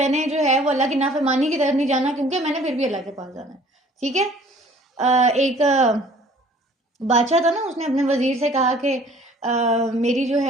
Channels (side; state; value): both; normal; correlation 0.53